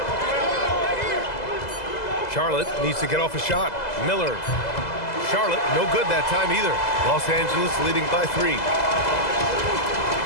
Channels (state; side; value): late; right; 2.0 ms